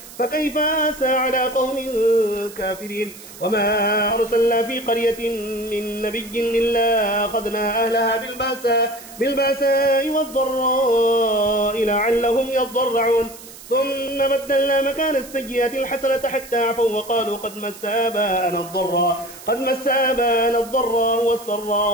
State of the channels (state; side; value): noise; right; hiss, 17 dB below the sound